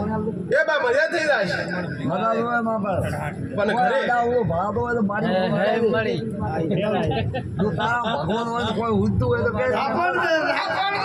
એ બા મજા થઈ જાય છે પણ ઘરે ભાડો હોય તો મારી જો તારા ભગવાન હોય તો કોઈ ઉડતું હોય તો કે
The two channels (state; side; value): identical; both; correlation 1.00